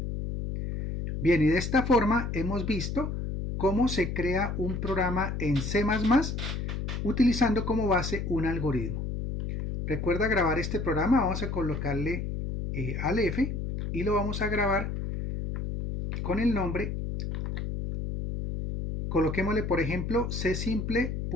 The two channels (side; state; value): left; noise; hum, 3 dB below the sound